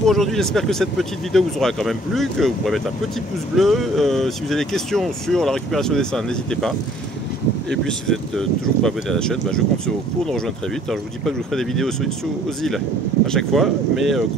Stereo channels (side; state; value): both; normal; correlation 0.57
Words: aujourd'hui. J'espère que cette petite vidéo vous aura quand même plu, que vous pourrez mettre un petit pouce bleu. Si vous avez des questions sur la récupération d'essaims, n'hésitez pas. Et puis si vous êtes toujours pas abonné à la chaîne, je compte sur vous pour nous rejoindre très vite. Alors je vous dis pas que je vous ferai des vidéos aux îles à chaque fois, mais